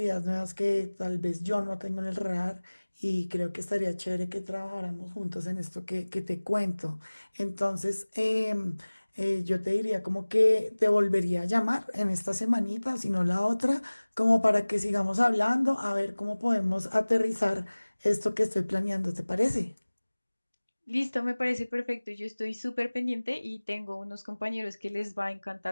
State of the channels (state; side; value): inverted; both; correlation -1.00